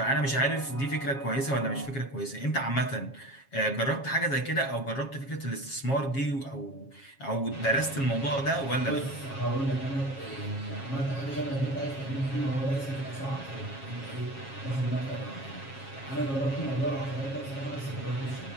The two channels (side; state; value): right; late; 7.3 ms